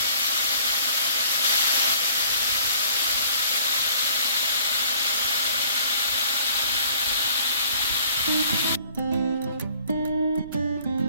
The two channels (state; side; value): inverted; both; correlation -0.54